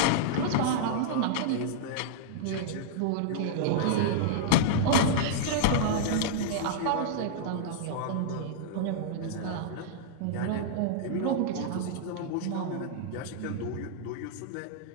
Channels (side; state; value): both; different; correlation -0.01